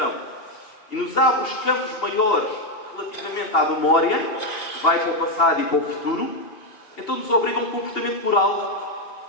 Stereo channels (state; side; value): late; right; 2.7 ms